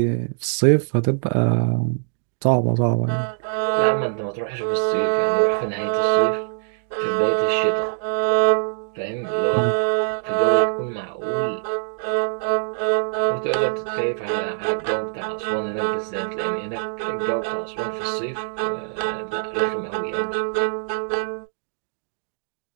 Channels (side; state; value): left; silent; digital silence